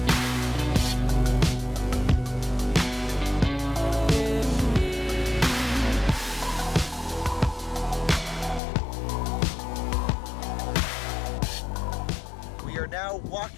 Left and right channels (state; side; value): drops out; right; at 8.6 s